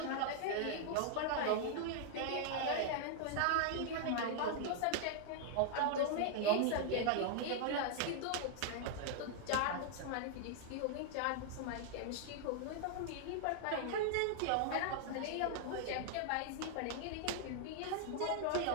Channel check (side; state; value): both; different; correlation 0.00